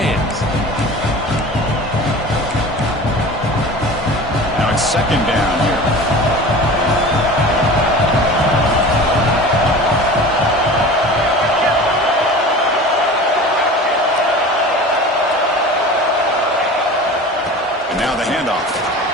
Now it's second down here. And now the handoff.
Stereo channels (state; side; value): normal; both; correlation 0.37